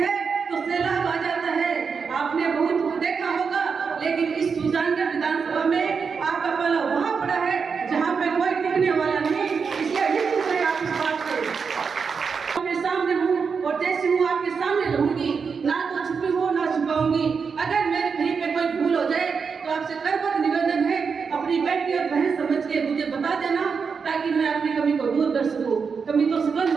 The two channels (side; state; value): left; quieter; 5.7 dB